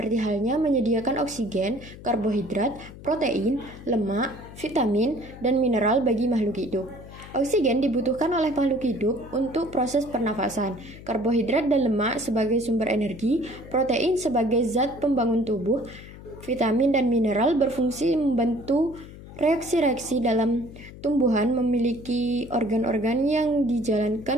halnya menyediakan oksigen, karbohidrat, protein, lemak, vitamin, dan mineral bagi makhluk hidup. Oksigen dibutuhkan oleh makhluk hidup untuk proses pernafasan, karbohidrat dan lemak sebagai sumber energi, protein sebagai zat pembangun tubuh, vitamin dan mineral berfungsi membantu reaksi-reaksi dalam tumbuhan, memiliki organ-organ yang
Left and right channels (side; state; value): left; noise; hum, 16 dB below the sound